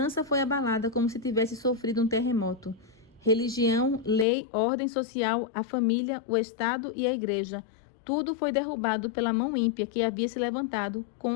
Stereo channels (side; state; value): right; drops out; at 4.2 s